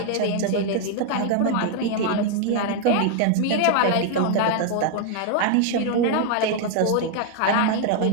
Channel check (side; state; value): both; different; correlation 0.00